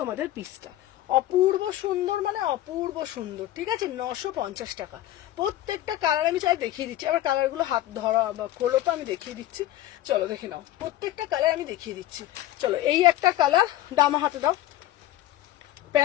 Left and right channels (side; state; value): right; quieter; 14.2 dB